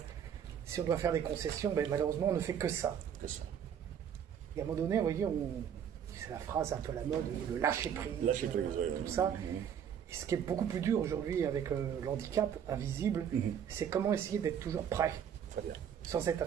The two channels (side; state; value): left; quieter; 8.5 dB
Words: Si on doit faire des concessions, malheureusement, on ne fait que ça. Et à un moment donné, vous voyez, c'est la phrase un peu à la mode, le lâcher prise, tout ça. Et ce qui est beaucoup plus dur aujourd'hui avec l'handicap invisible, c'est comment essayer d'être toujours prêt, sans être